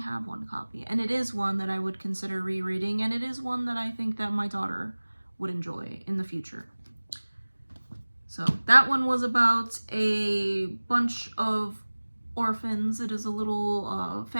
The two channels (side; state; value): both; inverted; correlation -1.00